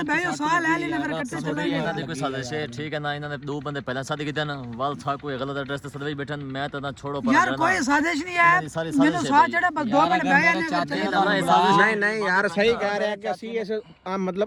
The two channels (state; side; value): identical; both; correlation 1.00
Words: ਬਹਿ ਜਾ ਸਾਹ ਲੈ ਲੈਨੇ ਫਿਰ ਇਕੱਠੇ ਚੱਲਾਂਗੇ। ਇਹਨਾਂ ਦੀ ਕੋਈ ਸਾਜ਼ਿਸ਼ ਹੈ, ਠੀਕ ਹੈ ਨਾ? ਇਹਨਾਂ ਨੇ 2 ਬੰਦੇ ਪਹਿਲਾਂ ਸਾਦੇ ਕੀਤੇ ਨਾ, ਵਾਲ ਥਾ ਕੋਈ ਗਲਤ ਐਡਰੈਸ ਤੇ ਸਦਵੇ ਬੈਠਣ, ਮੈਂ ਤਾਂ ਨਾ ਛੋੜੋ ਪਰ ਯਾਰ ਕੋਈ ਸਾਜ਼ਿਸ਼ ਨਹੀਂ ਹੈ, ਮੈਨੂੰ ਸਾਹ ਚੜਾ ਬਸ 2 ਮਿੰਟ ਬਹਿ ਜਾਨੇ ਫਿਰ ਚਲੇ ਚੱਲਾਂਗੇ। ਨਹੀਂ ਨਹੀਂ ਯਾਰ ਸਹੀ ਕਹਿ ਰਿਹਾ ਕਿ ਅਸੀਂ ਇਸ